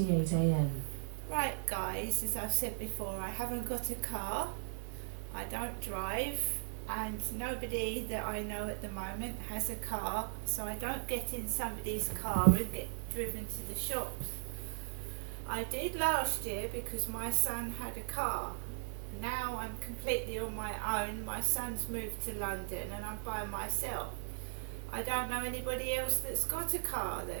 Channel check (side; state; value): left; silent; digital silence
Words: a.m. Right guys, as I've said before, I haven't got a car, I don't drive, and nobody that I know at the moment has a car, so I don't get in somebody's car and get driven to the shops. I did last year because my son had a car. Now I'm completely on my own. My son's moved to London and I'm by myself. I don't know anybody else that's got a car